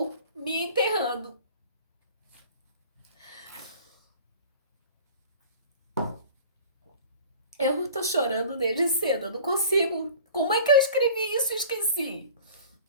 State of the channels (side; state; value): both; inverted; correlation -0.44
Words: me enterrando. Eu tô chorando desde cedo, eu não consigo. Como é que eu escrevi isso e esqueci?